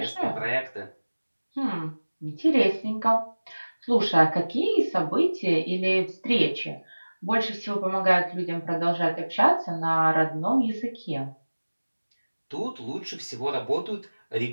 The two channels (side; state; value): both; inverted; correlation -1.00